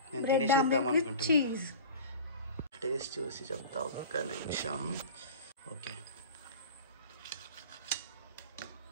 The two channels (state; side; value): inverted; both; correlation -0.36